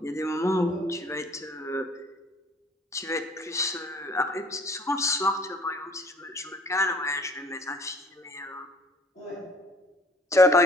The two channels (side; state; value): both; normal; correlation 0.55